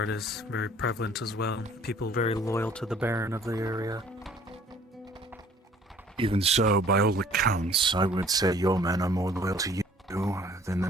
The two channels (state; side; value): normal; both; correlation 0.55